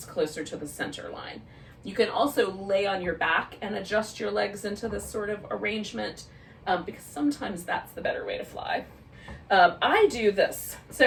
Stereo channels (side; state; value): both; identical; correlation 1.00